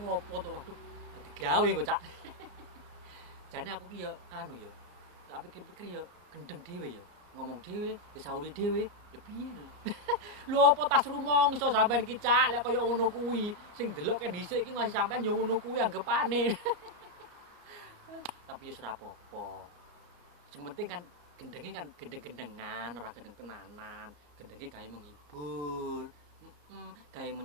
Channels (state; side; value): late; left; 34 ms